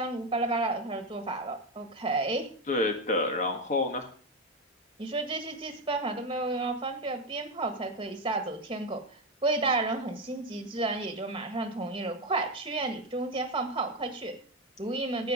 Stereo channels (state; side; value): normal; both; correlation 0.12